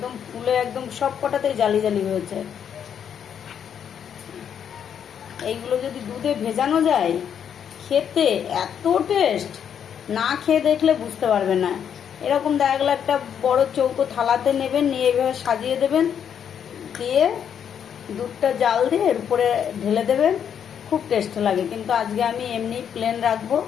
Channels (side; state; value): right; quieter; 8.4 dB